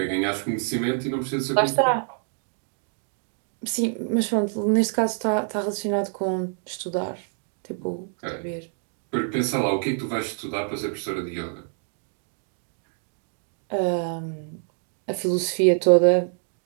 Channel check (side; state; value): left; silent; 55 dB below the other